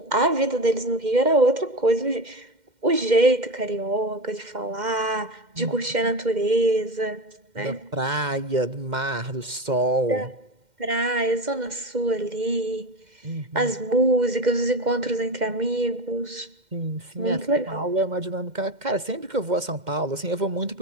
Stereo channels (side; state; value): left; late; 2.1 ms